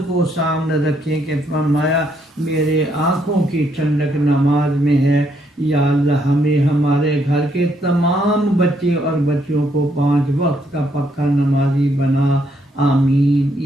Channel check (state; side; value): normal; both; correlation 0.73